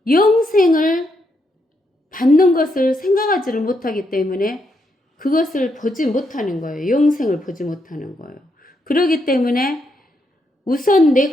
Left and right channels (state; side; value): normal; both; correlation 0.79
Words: 영생을 받는 것을 생각하지를 못하기 때문에 그것을 보지 못하는 거예요. 영생을 보지 못하는 거예요. 그렇기 때문에 우선